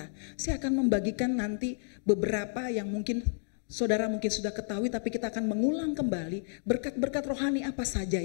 Saya akan membagikan nanti beberapa yang mungkin saudara mungkin sudah ketahui, tapi kita akan mengulang kembali berkat-berkat rohani apa saja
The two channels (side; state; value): right; silent; digital silence